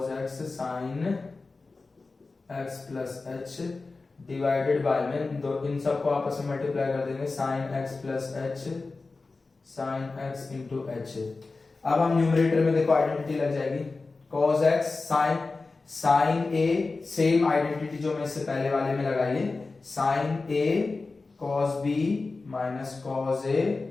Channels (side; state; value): right; quieter; 3.8 dB